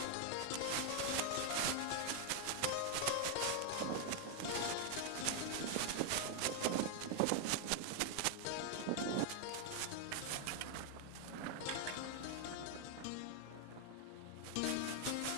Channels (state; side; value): different; both; correlation 0.00